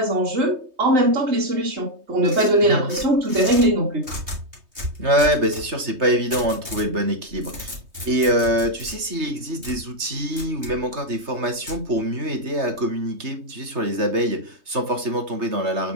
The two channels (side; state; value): left; late; 3.2 ms